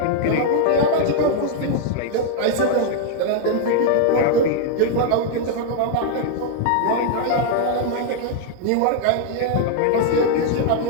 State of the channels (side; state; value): both; different; correlation -0.01